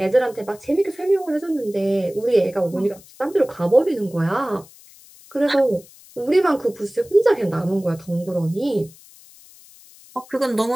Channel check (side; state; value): left; noise; hiss, 23 dB below the sound